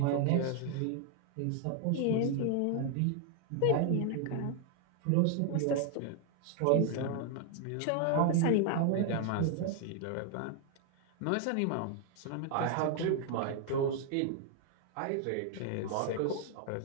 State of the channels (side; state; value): both; different; correlation 0.00